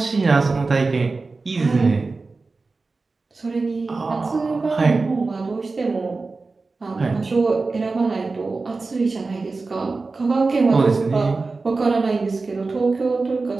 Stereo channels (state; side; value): quieter; left; 3.9 dB